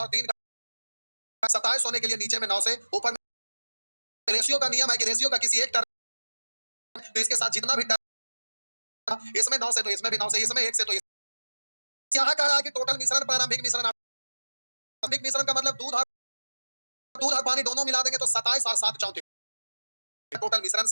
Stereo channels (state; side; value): inverted; both; correlation -1.00